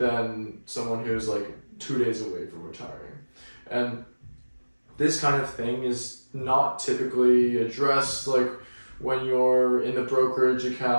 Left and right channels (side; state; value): both; inverted; correlation -1.00